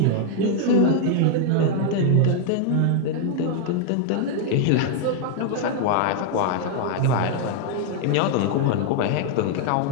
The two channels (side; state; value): both; different; correlation 0.00